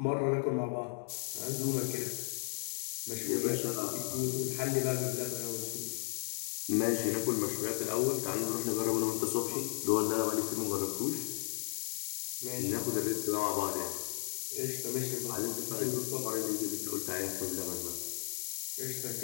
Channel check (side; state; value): right; silent; 55 dB below the other